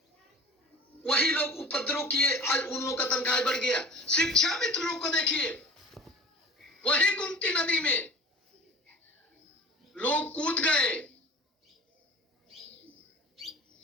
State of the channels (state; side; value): normal; both; correlation 0.40